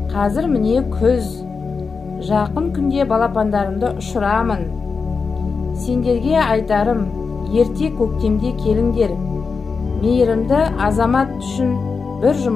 Қазір міне күз, жақын күнде балапандарымды ұшырамын. Сендерге айтарым, ерте көктемде келіңдер. Мейірімді азамат үшін бір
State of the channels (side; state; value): right; quieter; 4.9 dB